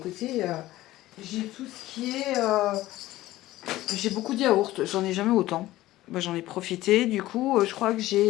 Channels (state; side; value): quieter; right; 16.2 dB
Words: j'ai tout ce qui est. J'ai beaucoup de yaourts. J'en ai jamais autant. Bah, j'en ai profité. Du coup, je crois que